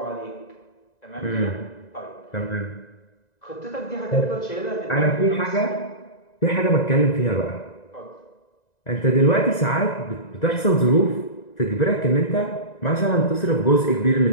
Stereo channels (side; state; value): right; late; 1.9 ms